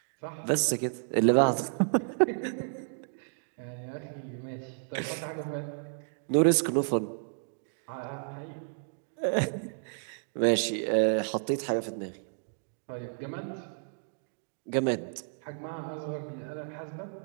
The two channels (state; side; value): silent; left; digital silence